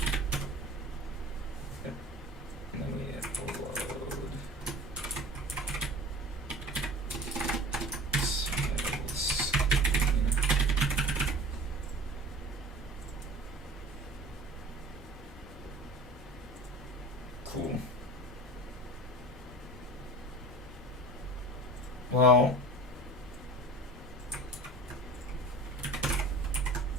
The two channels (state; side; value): normal; both; correlation 0.39